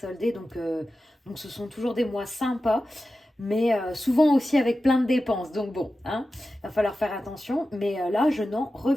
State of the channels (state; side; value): normal; both; correlation 0.93